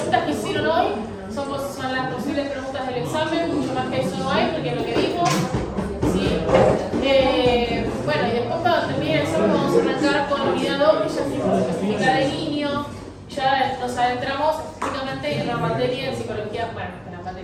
que hicieron hoy son las posibles preguntas del examen, mucho más que eso no hay, porque es lo que vimos. ¿Sí? Bueno, y después cuando termine el examen vamos a arrancar con la unidad 2, que ya se específica de niño, ya nos adentramos específicamente en la materia de psicología, bueno, en la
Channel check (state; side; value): identical; both; correlation 1.00